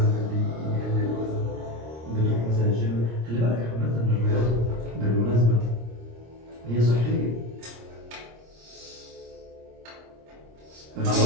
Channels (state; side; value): late; left; 26 ms